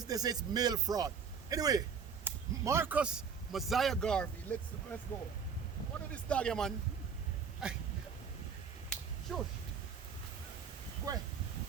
say it's mail fraud. Anyway, Marcus Mosiah Garvey, let's go. What is this dog here, man? Shush. Go ahead.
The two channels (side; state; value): left; quieter; 6.3 dB